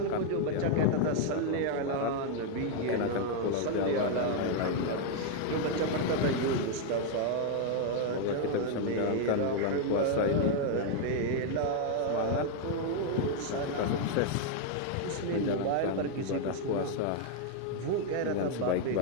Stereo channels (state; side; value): different; both; correlation 0.00